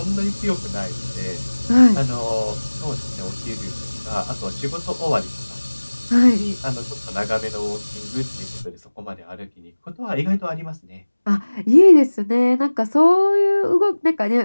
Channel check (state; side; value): inverted; both; correlation -1.00